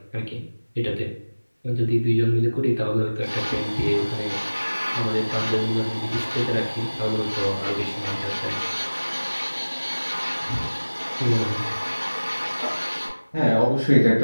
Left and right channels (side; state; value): both; inverted; correlation -1.00